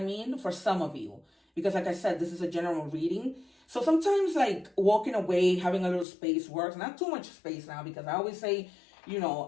mean? For some of you. Because like I said, this is a general reading. So sometimes like walking away, having a little space works. Not too much space now, because I always say,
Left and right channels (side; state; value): right; drops out; at 6.1 s